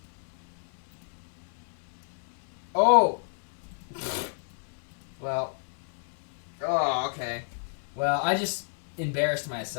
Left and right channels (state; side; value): silent; right; 57 dB below the other